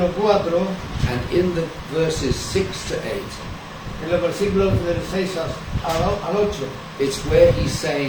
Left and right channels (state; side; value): identical; both; correlation 1.00